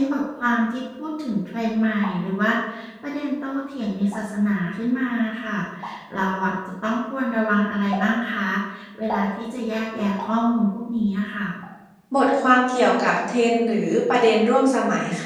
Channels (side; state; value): both; identical; correlation 1.00